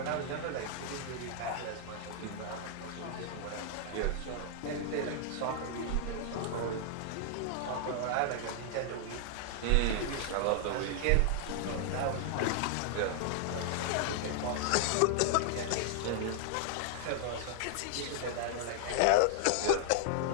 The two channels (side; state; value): both; different; correlation 0.00